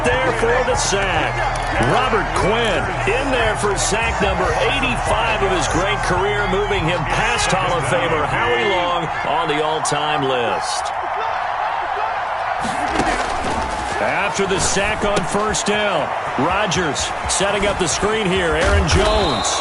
there for the sack. Robert Quinn in there for sack number 85 of his great career, moving him past Hall of Famer Howie Long on the all-time list. After the sack on first down, Rodgers setting up the screen here. Aaron Jones.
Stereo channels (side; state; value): both; identical; correlation 1.00